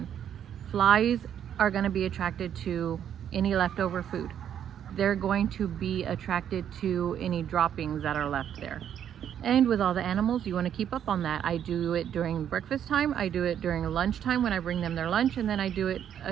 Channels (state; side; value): quieter; left; 9.5 dB